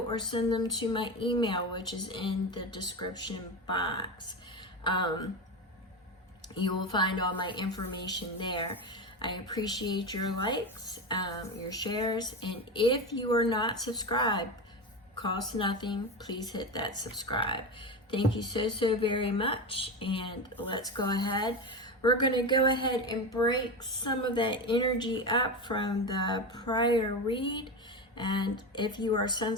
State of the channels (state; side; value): normal; both; correlation 0.20